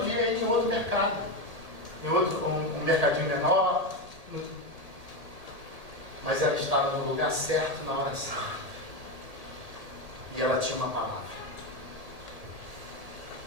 ir em outro mercado, em outro, um mercadinho menor, mas ela estava no lugar certo, na hora certa. E ela tinha uma palavra.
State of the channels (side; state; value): left; late; 1.8 ms